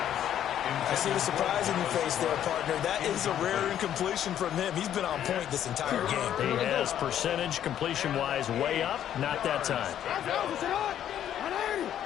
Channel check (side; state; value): right; quieter; 10.5 dB